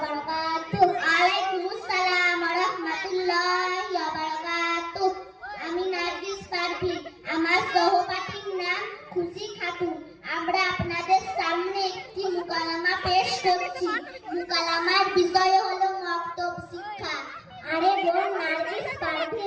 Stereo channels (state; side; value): identical; both; correlation 1.00